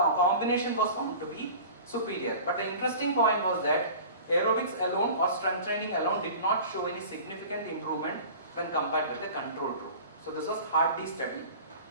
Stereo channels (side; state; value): both; inverted; correlation -0.39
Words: was found to be superior. But the interesting point was that aerobics alone or strength training alone did not show any significant improvement when compared with the control group. So this was Hardy study.